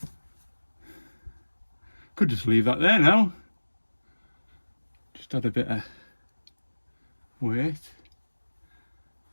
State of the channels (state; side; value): inverted; both; correlation -1.00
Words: Could just leave that there now. Just add a bit of weight.